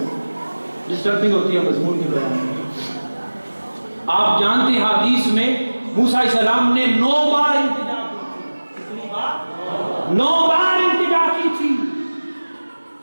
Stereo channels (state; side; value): inverted; both; correlation -1.00